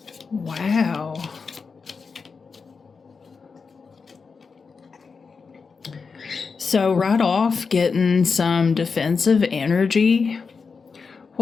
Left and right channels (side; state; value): right; quieter; 5.1 dB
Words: Wow. So, right off, getting some defensive energy.